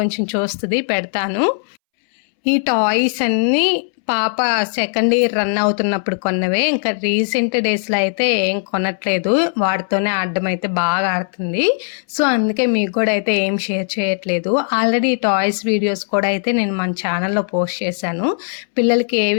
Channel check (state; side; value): silent; right; 66 dB below the other